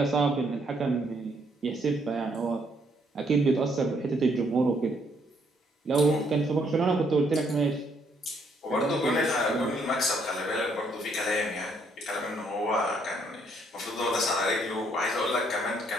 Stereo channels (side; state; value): both; normal; correlation 0.70